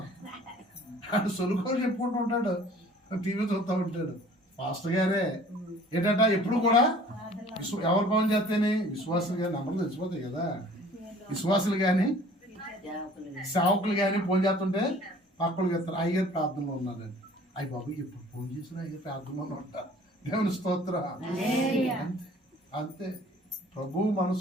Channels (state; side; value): normal; both; correlation 0.51